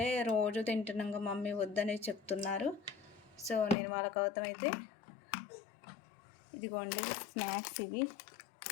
రోజు తింటున్నాగా మమ్మీ వద్దని చెప్తున్నారు. సో నేను వాళ్ళ కోసం అయితే ఇదిగోండి స్నాక్స్ ఇవి.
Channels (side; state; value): right; drops out; at 3.8 s